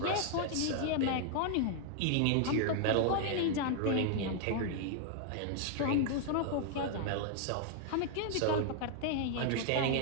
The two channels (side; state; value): both; different; correlation 0.00